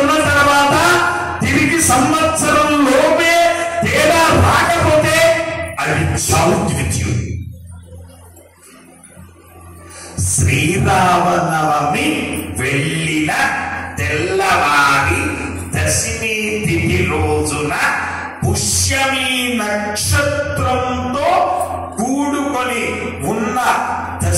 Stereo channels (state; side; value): identical; both; correlation 1.00